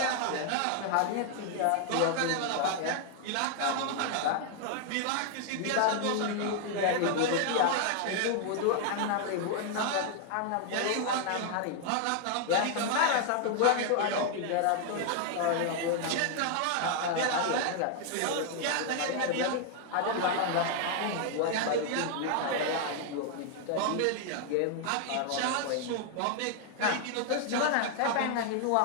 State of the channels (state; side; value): different; both; correlation 0.00